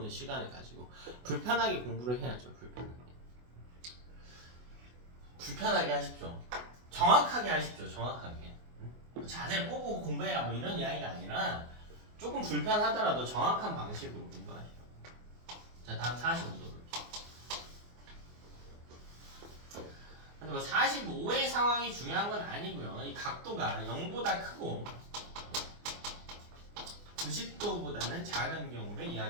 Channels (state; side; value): late; left; 24 ms